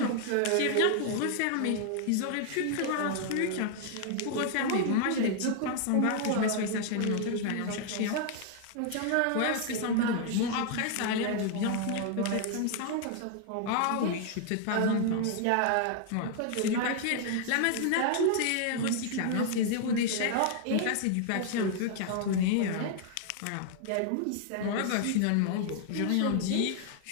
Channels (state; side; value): different; both; correlation 0.00